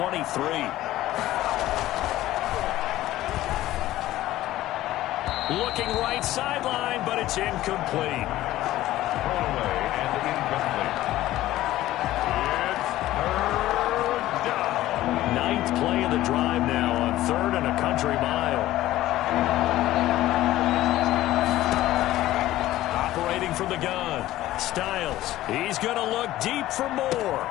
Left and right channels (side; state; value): right; quieter; 15.2 dB